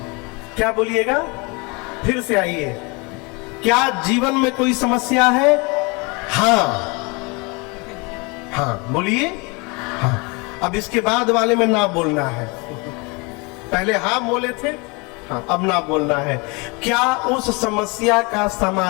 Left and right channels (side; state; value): right; quieter; 28.9 dB